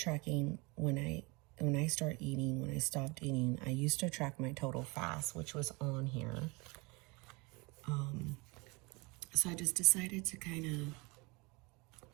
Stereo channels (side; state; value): left; quieter; 26.8 dB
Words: when I start eating, when I stopped eating. I used to track my total fast, which was on here. So I just decided to kind of,